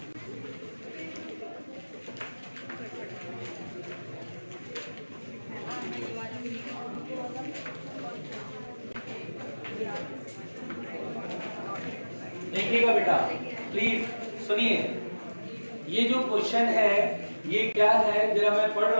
देखिएगा बेटा प्लीज सुनिए। ये जो क्वेश्चन है ये क्या है, जरा मैं पढ़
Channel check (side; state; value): both; inverted; correlation -1.00